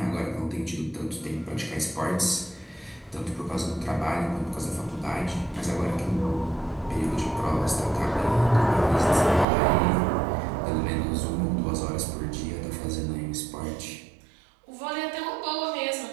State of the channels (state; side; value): drops out; left; at 9.5 s